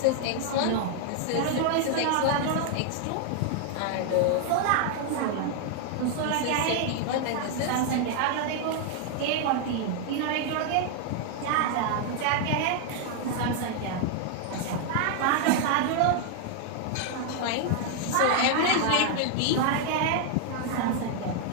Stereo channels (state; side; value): different; both; correlation 0.00